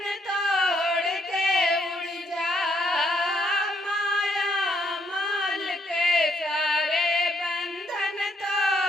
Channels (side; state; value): both; normal; correlation 0.72